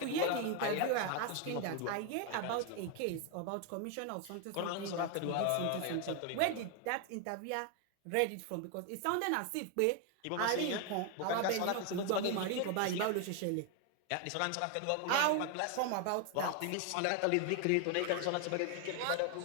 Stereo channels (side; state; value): both; different; correlation 0.01